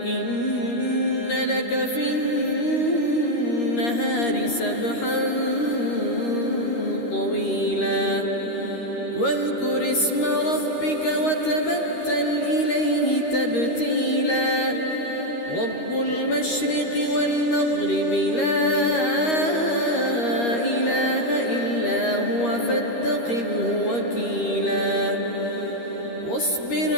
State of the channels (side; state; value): right; late; 13 ms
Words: إن لك في النهار سبحا طويلا واذكر اسم ربك وتبتل إليه تبتيلا رب المشرق والمغرب لا إله إلا هو فاتخذه وكيلا واصبر